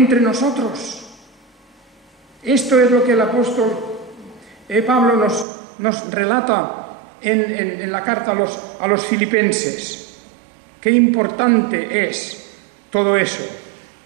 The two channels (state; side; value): drops out; left; at 5.5 s